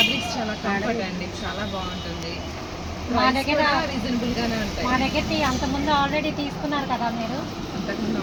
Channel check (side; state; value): both; identical; correlation 1.00